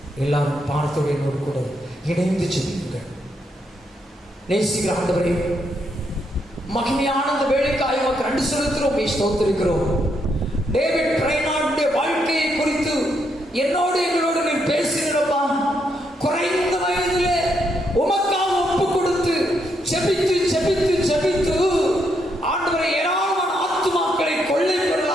எல்லாரும் பார்த்தோடு என்னோடு கூட இணைந்து ஜெபியுங்கள். நேசிக்கிற ஆண்டவரே, மகிமையான அந்த வேலைக்காய் உமக்கு நன்றி செலுத்துகிறோம், ஸ்தோத்திரிக்கிறோம். டேவிட் பிரைனார்டுடைய வாழ்க்கையை குறித்து என்னோடு எங்களோடு நீ பேசினப்பா. குறைந்த வயதிலே உமக்காக ஒப்பு கொடுத்து ஜெபித்து ஜெபித்து ஜெபித்து ஆண்டவரை ஏராளமான ஆத்துமாக்களை கொள்ளை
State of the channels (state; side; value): normal; both; correlation 0.77